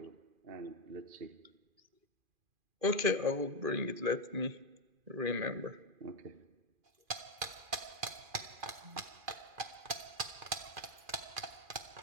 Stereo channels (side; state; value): left; late; 2.5 ms